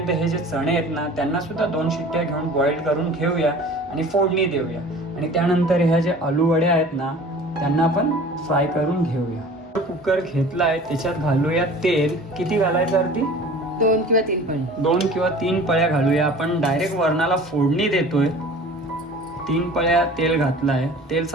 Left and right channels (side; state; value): both; normal; correlation 0.43